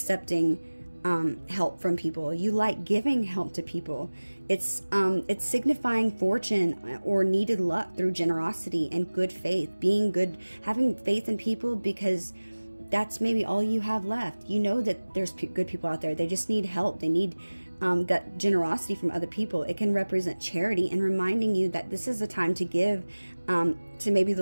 help from people. You like giving help to people. It's signifying fortune or needed luck through generosity and good faith, being good, having faith in people, because that's maybe all you have left. You know that there's good people out there. They just need help. They need that generosity from other people. It can represent charity and reminding you that this is a time to give to maybe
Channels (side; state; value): both; inverted; correlation -1.00